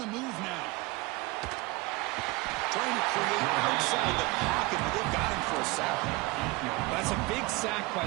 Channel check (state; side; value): quieter; left; 23.0 dB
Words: move now. Trying to create outside the pocket, but they've got him for a sack. That's a big sack by